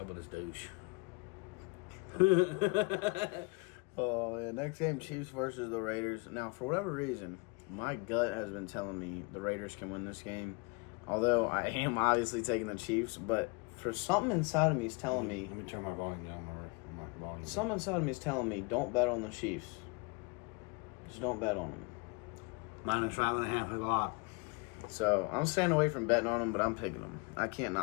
with this douche. Oh, yeah. Next game, Chiefs versus the Raiders. Now, for whatever reason, my gut has been telling me the Raiders can win this game. Although I am obviously taking the Chiefs, but for something inside of me is telling me. Let me turn my volume down. My volume. Something inside of me is telling me don't bet on the Chiefs. Just don't bet on them. -5.5 is a lot. So I'm staying away from betting on them, but I'm picking them. I can't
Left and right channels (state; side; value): quieter; right; 28.3 dB